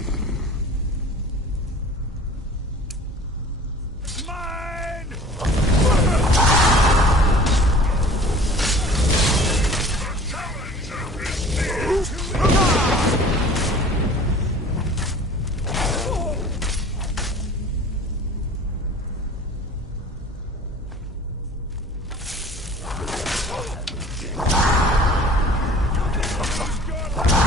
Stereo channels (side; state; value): both; normal; correlation 0.45